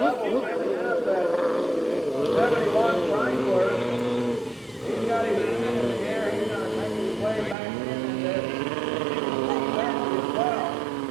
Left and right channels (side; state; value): left; drops out; at 7.6 s